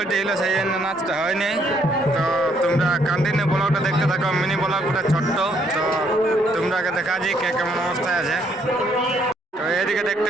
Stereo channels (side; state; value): both; normal; correlation 0.69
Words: ছিল, সেই জন্য নাচটা হয়নি। তো তোমরা কন্টিনিউ ব্লগটা দেখতে থাকো, মিনি ব্লগটা ছোট্ট। তো তোমরাকে দেখাচ্ছি কে কেমন অবস্থায় আছে। তো এদিকে দেখতে